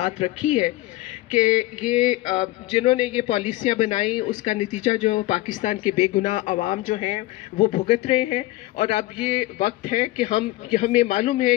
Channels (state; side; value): quieter; right; 18.0 dB